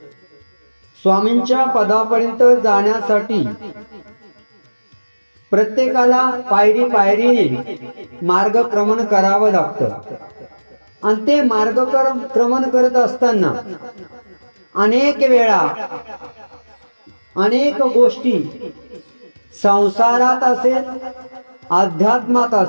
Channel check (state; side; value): inverted; both; correlation -1.00